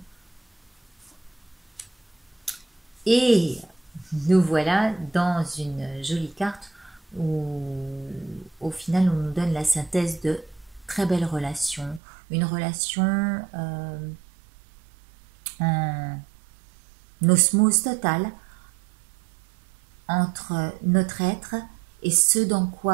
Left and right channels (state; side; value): drops out; left; at 12.0 s